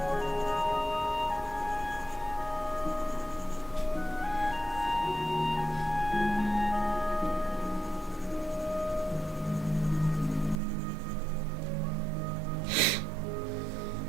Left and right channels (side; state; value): left; drops out; at 10.6 s